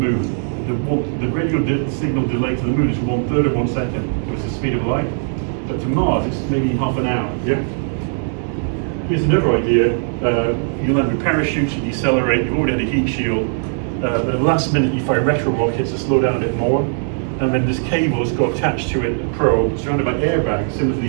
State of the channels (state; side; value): silent; left; 58 dB below the other